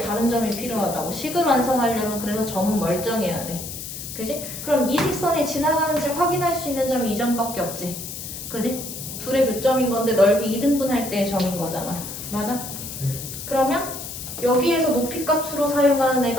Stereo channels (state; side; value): noise; left; hiss, 9 dB below the sound